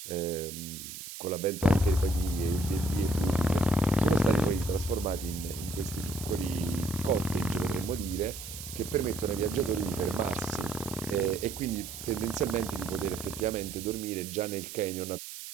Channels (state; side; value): noise; right; hiss, 10 dB below the sound